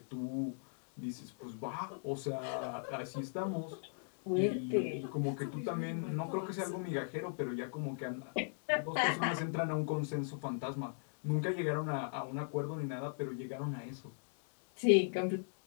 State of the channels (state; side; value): silent; right; digital silence